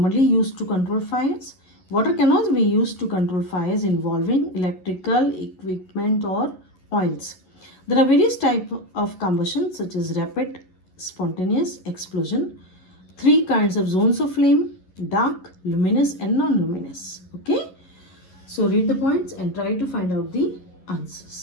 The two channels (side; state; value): right; late; 11 ms